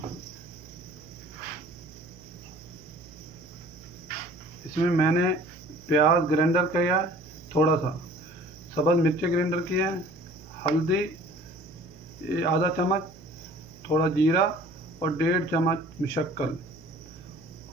इसमें मैंने प्याज ग्राइंडर किया, थोड़ा सा सब्ज़ मिर्ची ग्राइंडर किया, हल्दी आधा चम्मच, थोड़ा जीरा और 1.5 चम्मच मुशक्कल,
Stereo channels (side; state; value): right; noise; hum, 21 dB below the sound